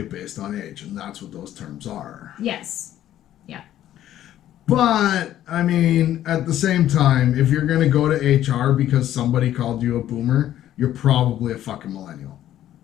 based on age, and that's what those terms are. Yes. Yeah. But, at the same time, if you're going to go to HR because somebody called you a boomer, you're probably a fucking millennial.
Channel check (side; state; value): right; quieter; 12.3 dB